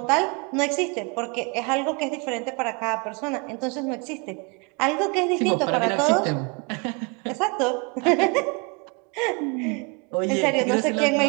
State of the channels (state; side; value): quieter; left; 30.9 dB